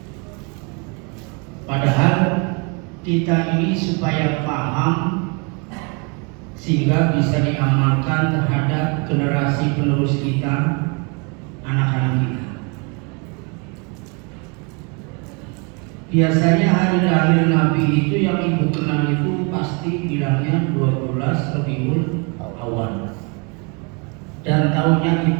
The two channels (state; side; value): quieter; left; 32.3 dB